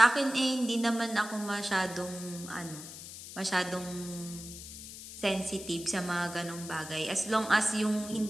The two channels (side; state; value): left; noise; hiss, 12 dB below the sound